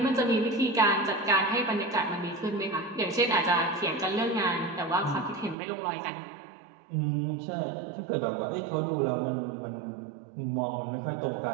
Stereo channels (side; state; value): left; drops out; at 5.6 s